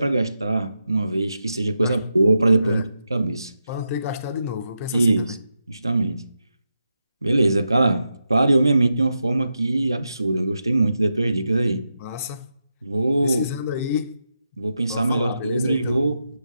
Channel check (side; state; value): both; inverted; correlation -0.87